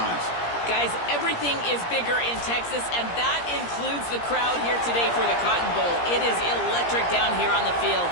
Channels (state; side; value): late; right; 17 ms